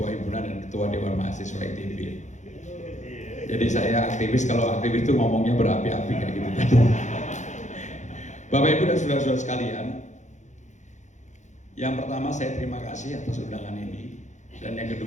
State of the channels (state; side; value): late; right; 0.35 ms